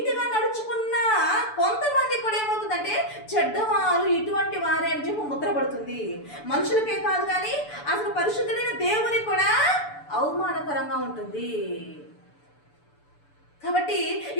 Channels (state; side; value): late; right; 6.9 ms